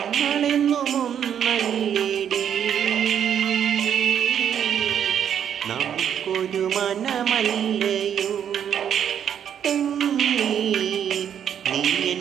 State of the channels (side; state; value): left; quieter; 9.0 dB